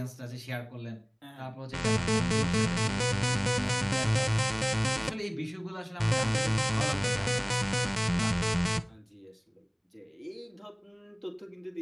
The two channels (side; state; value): both; identical; correlation 1.00